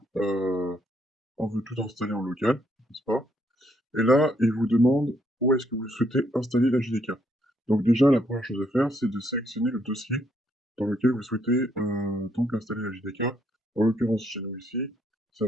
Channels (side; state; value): both; normal; correlation 0.72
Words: installer en local, n'est-ce pas? Et là, il vous demande où est-ce que vous souhaitez installer la JDK. Donc déjà, la première chose à faire, c'est de sélectionner le dossier dans lequel vous souhaitez donc installer la JDK. En l'occurrence, chez nous ici, ça